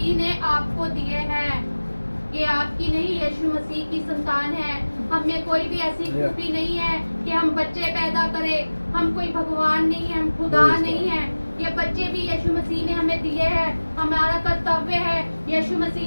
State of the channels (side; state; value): both; inverted; correlation -1.00